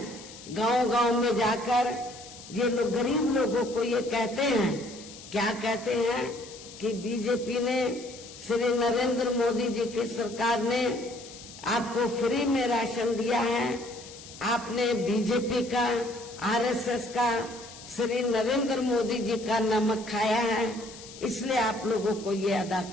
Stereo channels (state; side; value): noise; left; hiss, 16 dB below the sound